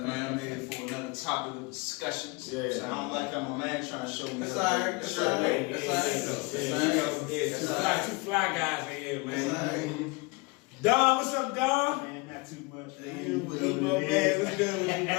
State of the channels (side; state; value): right; quieter; 26.7 dB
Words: I'm here for another topic of discussions. Yeah. So I don't like how my man trying to show me. That's all right. That's all right. That's all right. Two fly guys in here, man. Don, what's up, Don? Man, not too much. You my man. What's good with you,